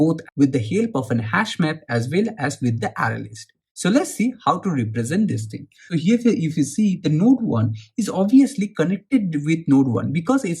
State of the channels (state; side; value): identical; both; correlation 1.00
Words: with the help of an hash map as well as with the array list. So let's see how to represent this thing. So here if you see, the node 1 is obviously connected with node 1 because